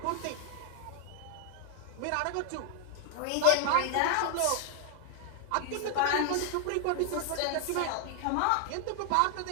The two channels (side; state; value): both; different; correlation 0.00